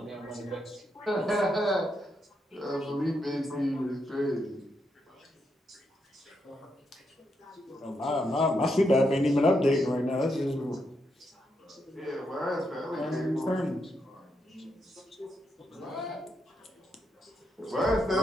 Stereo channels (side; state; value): both; normal; correlation 0.81